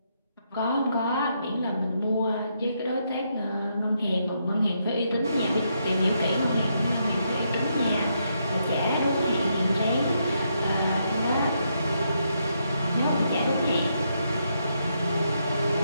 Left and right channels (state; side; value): inverted; both; correlation -0.78